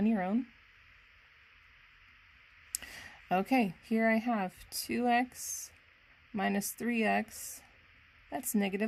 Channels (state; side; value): identical; both; correlation 1.00